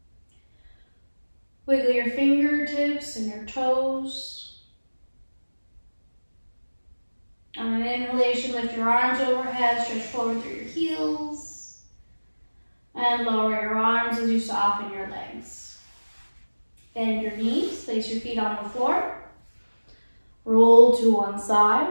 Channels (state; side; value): inverted; both; correlation -1.00